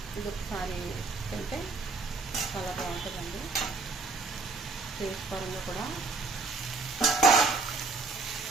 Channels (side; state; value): left; quieter; 3.8 dB